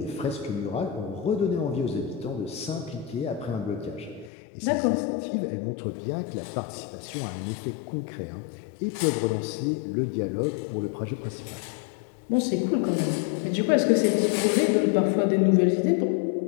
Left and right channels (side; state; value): right; drops out; at 4.3 s